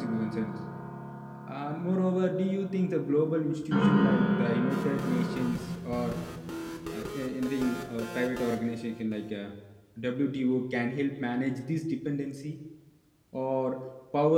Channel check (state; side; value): identical; both; correlation 1.00